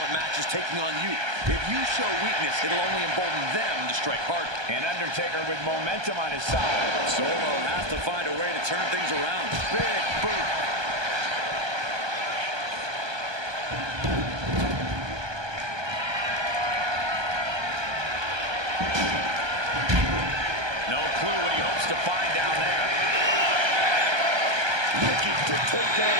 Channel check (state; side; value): late; left; 1.2 ms